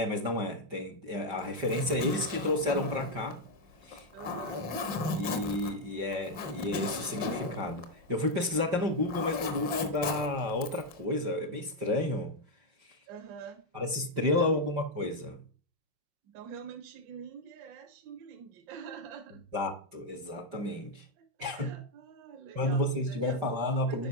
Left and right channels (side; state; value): left; late; 5.6 ms